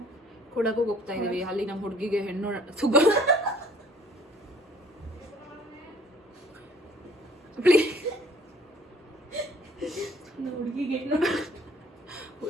ಕೊಡಗು ಹೋಗ್ತಾ ಇದೀವಿ. ಅಲ್ಲಿ ನಮ್ಮ ಹುಡುಗಿಗೆ ಹೆಣ್ಣು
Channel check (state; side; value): normal; both; correlation 0.55